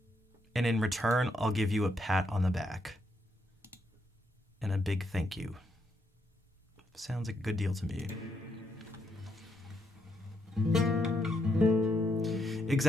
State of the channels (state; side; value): normal; both; correlation 0.77